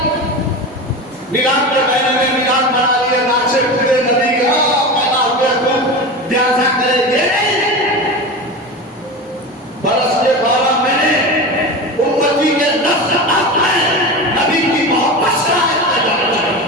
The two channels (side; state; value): both; normal; correlation 0.26